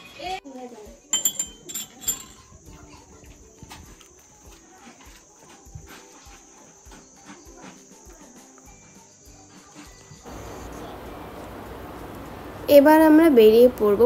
এবার আমরা বেরিয়ে পড়বো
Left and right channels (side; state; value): both; identical; correlation 1.00